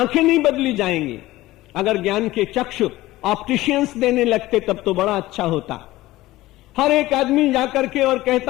नहीं बदली जाएंगी। अगर ज्ञान के चक्षु ऑप्टिशियंस देने लगते तब तो बड़ा अच्छा होता। हर एक आदमी जाकर के और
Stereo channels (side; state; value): right; quieter; 17.4 dB